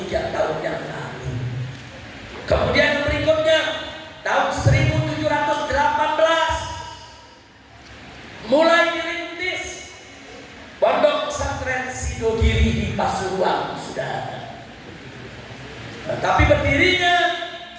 tahun yang lalu. Kemudian berikutnya tahun 1718 mulai Tapi berdirinya,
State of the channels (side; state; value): both; identical; correlation 1.00